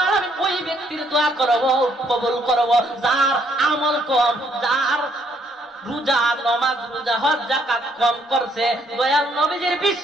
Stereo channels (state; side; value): normal; both; correlation 0.69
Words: আলামিন ওই ব্যক্তির দোয়া করব, কবুল করব যার আমল কম, যার রোজা নামাজ রোজা হজ যাকাত কম করছে, দয়াল নবীজির